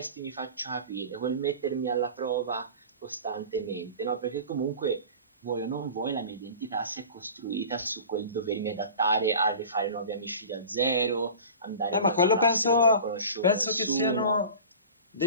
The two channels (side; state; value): both; inverted; correlation -0.38